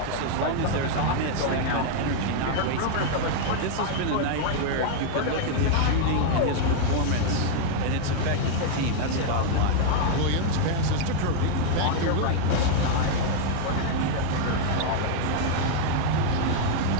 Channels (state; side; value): different; both; correlation -0.01